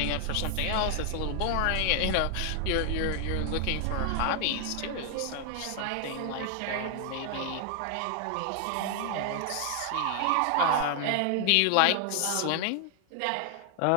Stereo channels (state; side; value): different; both; correlation 0.00